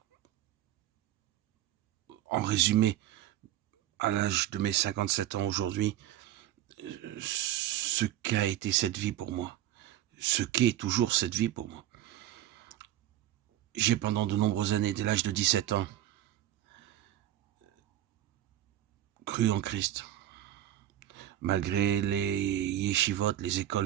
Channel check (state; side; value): quieter; left; 12.8 dB